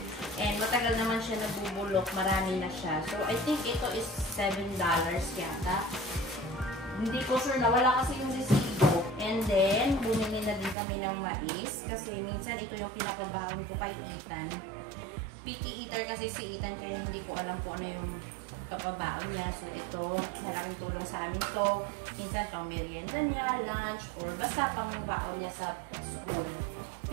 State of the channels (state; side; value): drops out; left; at 10.8 s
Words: And matagal naman siya nabubulok, marami na siya. So, I think ito is $7 yata. Hindi ko sure, nawala kasi yung resibo. And then, bumili na din kami ng mais kasi minsan ito yung pinapabawang ko kay Ethan. Picky eater kasi si Ethan kaya hindi ko alam kung ano yung kapabaon niya. So, ito, malaking tulong sa amin to. Minsan, pang merienda niya, lunch, or basta pang baon niya sa school.